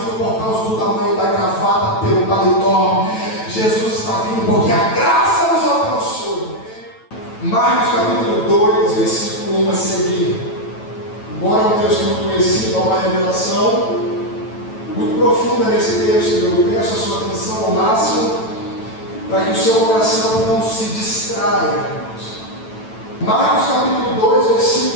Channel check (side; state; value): right; late; 9.1 ms